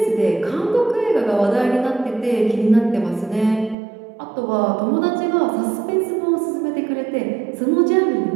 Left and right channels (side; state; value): left; drops out; at 3.8 s